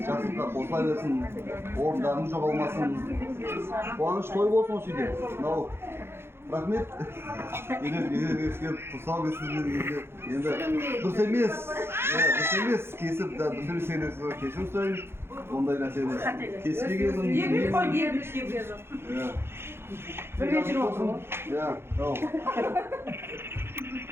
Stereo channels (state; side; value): late; left; 0.12 ms